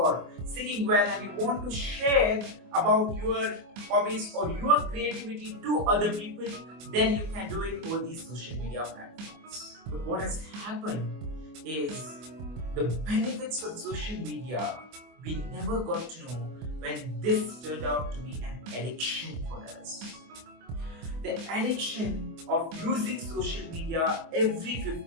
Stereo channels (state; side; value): late; left; 24 ms